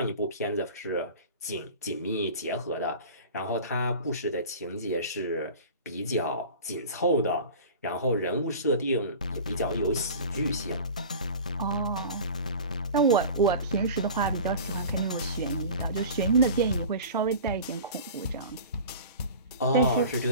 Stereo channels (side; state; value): both; inverted; correlation -0.37